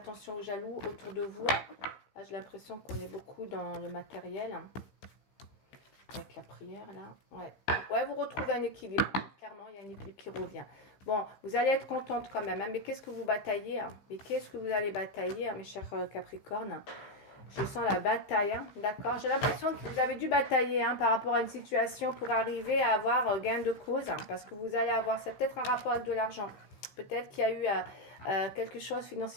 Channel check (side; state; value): right; late; 15 ms